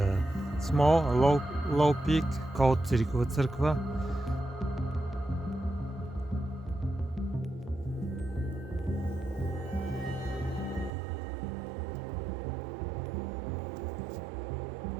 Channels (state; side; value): drops out; left; at 10.9 s